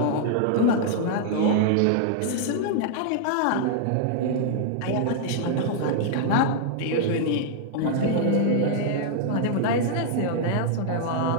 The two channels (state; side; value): different; both; correlation -0.01